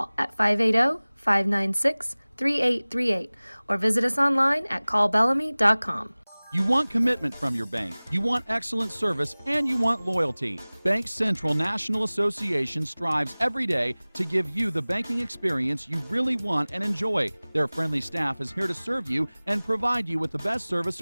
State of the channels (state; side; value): inverted; both; correlation -1.00